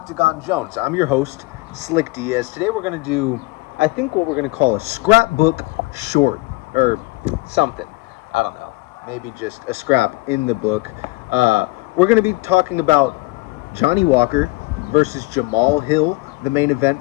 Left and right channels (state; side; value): quieter; right; 22.5 dB